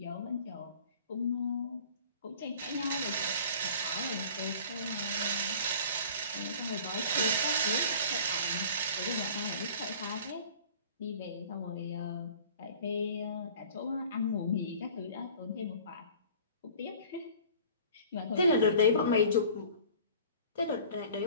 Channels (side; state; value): both; inverted; correlation -0.46